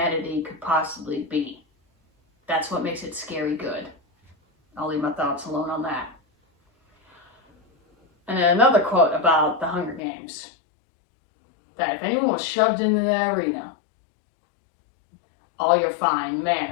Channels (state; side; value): drops out; right; at 10.0 s